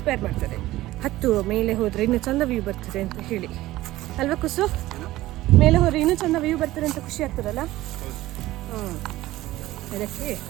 ಮಾಡ್ತದೆ. ಹತ್ತು ಮೇಲೆ ಹೋದರೆ ಇನ್ನೂ ಚಂದ ವ್ಯೂ ಬರ್ತದೆ ಅಂತ ಹೇಳಿ ಅಲ್ವಾ ಕುಸು? ಮೇಲೆ ಹೋದರೆ ಇನ್ನೂ ಚಂದ ವ್ಯೂ ಬರ್ತದೆ ಅಂತ ಖುಷಿ ಆಗ್ತದಲ್ಲ. ಅದಕ್ಕೆ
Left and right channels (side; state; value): left; quieter; 16.6 dB